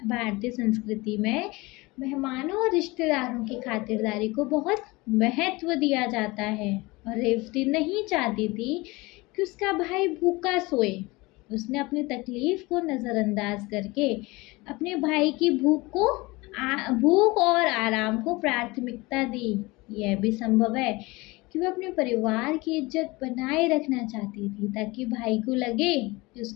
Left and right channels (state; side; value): quieter; right; 22.9 dB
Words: संस्कृति में मेहमानों और रिश्तेदारों की खातिरदारी को बहुत महत्व दिया जाता है और रेवती नहीं चाहती थी कि उसका भाई भूखा सोए। उसने अपनी तकलीफ को नज़रअंदाज करके अपने भाई की भूख और आराम को प्राथमिकता दी। यह भी संभव है कि वह अपने परिवार की इज्जत बनाए रखना चाहती थी ताकि भाई को लगे कि